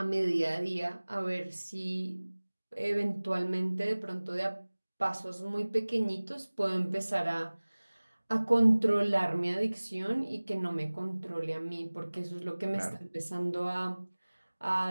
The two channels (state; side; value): inverted; both; correlation -1.00